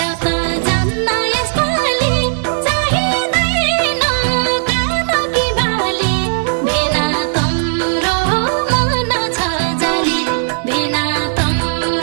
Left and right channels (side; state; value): left; silent; digital silence